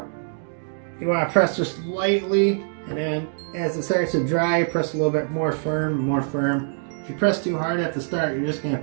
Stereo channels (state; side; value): silent; left; 63 dB below the other